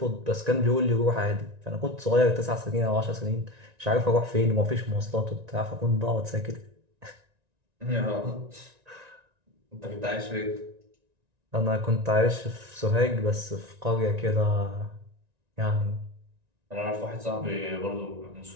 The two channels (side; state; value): left; late; 1.9 ms